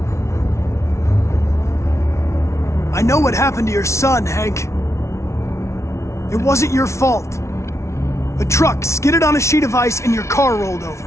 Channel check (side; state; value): right; late; 0.13 ms